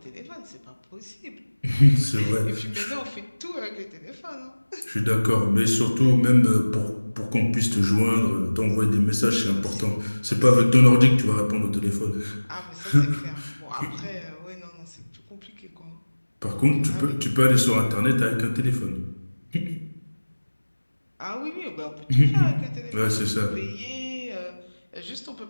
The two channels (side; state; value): both; inverted; correlation -1.00